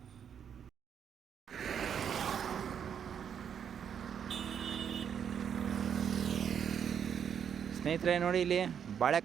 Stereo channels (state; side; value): quieter; left; 8.1 dB